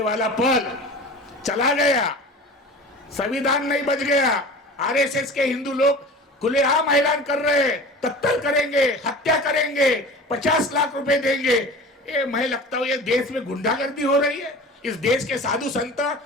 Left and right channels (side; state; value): both; normal; correlation 0.37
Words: वाला पल चला गया, संविधान नहीं बच गया। आरएसएस के हिंदू लोग खुलेआम ऐलान कर रहे हैं, कत्ल करेंगे, हत्या करेंगे, 50 लाख रुपए देंगे। ये मैं लगता हूं ये देश में गुंडागर्दी हो रही है, इस देश के साधु संत